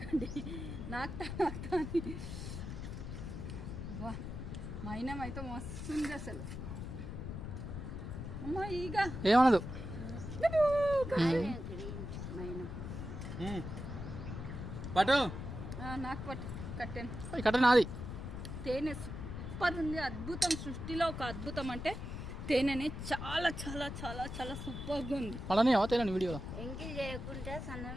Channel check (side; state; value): left; noise; rumble, 7 dB below the sound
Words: నాకుతా అని. వా మైనం అయితే మస్తుంది అసలు. అమ్మా ఈగ ఏమనదు. పట్టు నాకు పట్టు కట్టాను. కట్ట నాది. తేనె సూపర్ ఉంది, అద్భుతం. సృష్టిలో ఒక అద్భుతం అంటే తేనెని చాలా చాలా చాలా చాలా సూపర్గా ఉంది. అలానే తేనె వీడియోలో ఎంకి చేయకుంటే